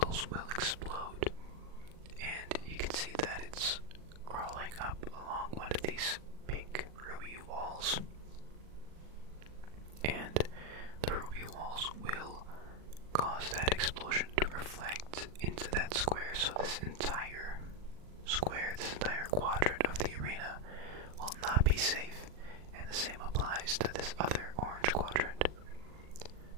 will explode. And you can see that it's crawling up along one of these pink ruby walls. And the ruby walls will cause that explosion to reflect into that square, so this entire square, this entire quadrant of the arena will not be safe, and the same applies to this other orange quadrant.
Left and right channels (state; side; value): late; left; 40 ms